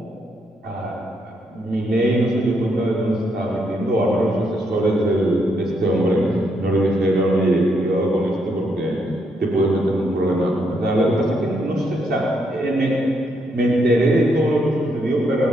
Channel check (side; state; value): both; normal; correlation 0.76